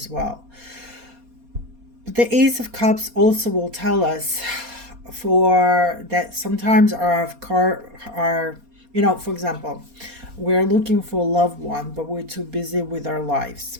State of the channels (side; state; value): left; late; 4.2 ms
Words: well. But the Ace of Cups also will tell us for that sometimes for example, we're looking for a loved one, but we're too busy with our lives.